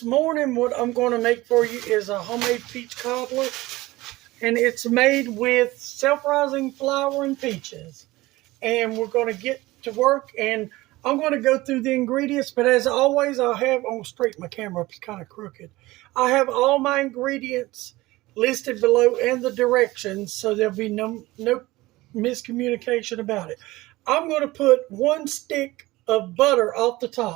morning what I'm going to make for you is a homemade peach cobbler, and it's made with self-rising flour and peaches. And we're going to get to work, and I'm going to go through the ingredients, but as always, I'm going to straighten my camera up, it's kind of crooked. I have all my ingredients listed below and the directions, so there'll be no miscommunication about it. I'm going to put 1 stick of butter off the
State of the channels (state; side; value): quieter; left; 19.2 dB